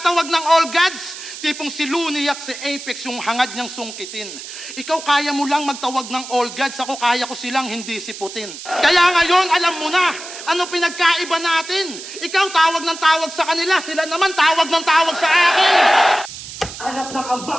ng all gods? Tipong si Looney at si Apex yung hangad niyang sungkitin. Ikaw kaya mo lang magtawag ng all gods, ako kaya ko silang hindi siputin. Kaya ngayon, alam mo na, ano pinagkaiba natin? Ikaw tawag ng tawag sa kanila, sila naman tawag ng tawag sa akin. Hanap ng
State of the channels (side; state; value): right; noise; hiss, 12 dB below the sound